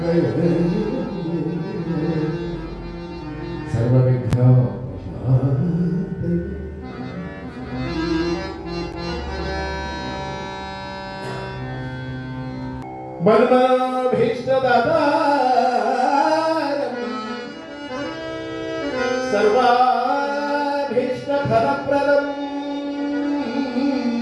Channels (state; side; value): identical; both; correlation 1.00